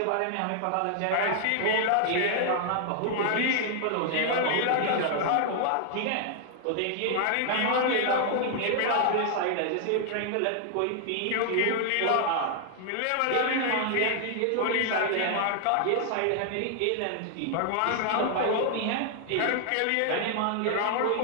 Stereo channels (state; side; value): different; both; correlation 0.00